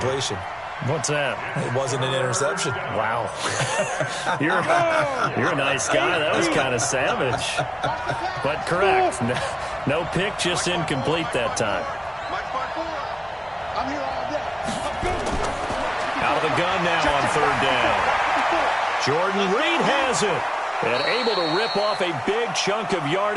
What's that? It wasn't an interception. Wow. You're a nice guy. That was kind of savage. But correct. No pick, just incomplete that time. I'm here all day. Out of the gun now on 3rd down. Jordan Reed has it. And able to rip off a big chunk of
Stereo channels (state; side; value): identical; both; correlation 1.00